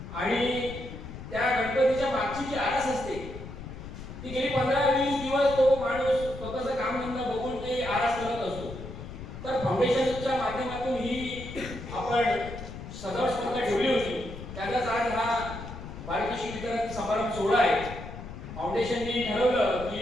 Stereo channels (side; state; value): left; noise; rumble, 11 dB below the sound